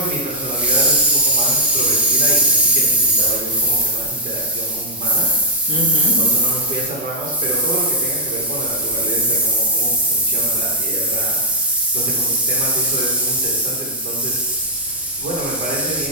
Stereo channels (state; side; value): normal; both; correlation -0.07